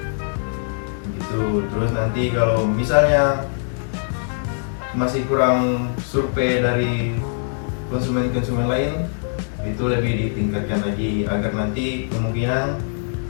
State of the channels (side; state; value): right; silent; 64 dB below the other